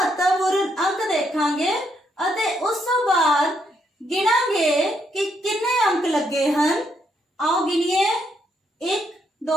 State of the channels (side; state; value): both; normal; correlation 0.75